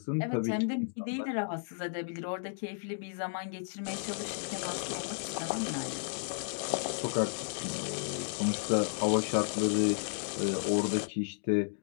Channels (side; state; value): right; silent; digital silence